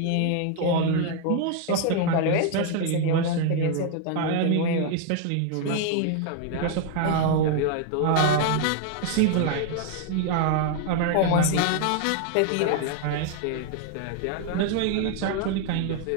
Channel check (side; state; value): both; different; correlation 0.00